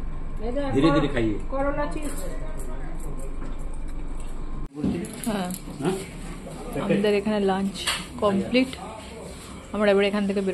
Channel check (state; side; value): identical; both; correlation 1.00